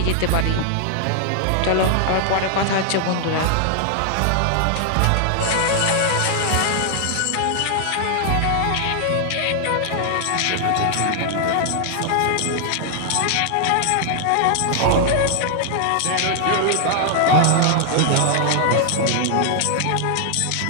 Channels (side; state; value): both; different; correlation 0.00